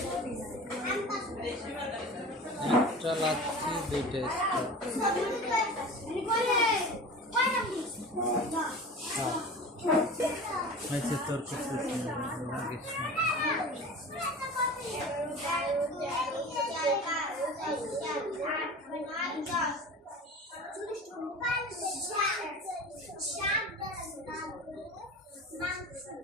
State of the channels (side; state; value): both; normal; correlation 0.35